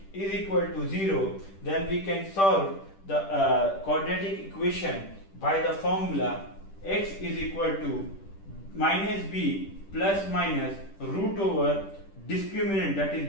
is equal to 0, then we can solve the quadratic equation by the formula x is equal to minus b plus minus root over discriminant, that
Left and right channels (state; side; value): late; right; 10 ms